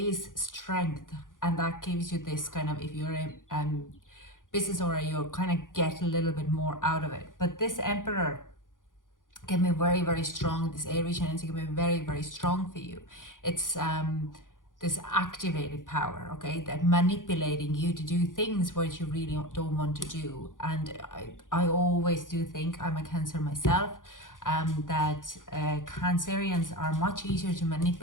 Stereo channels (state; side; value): late; right; 0.89 ms